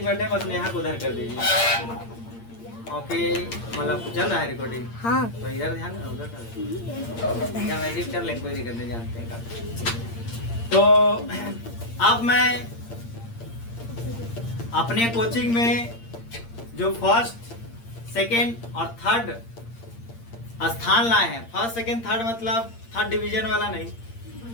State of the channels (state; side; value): late; right; 8.7 ms